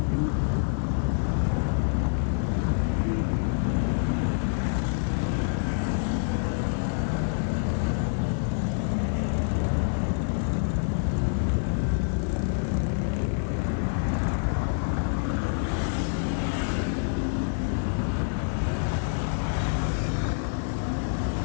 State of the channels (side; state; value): right; silent; 58 dB below the other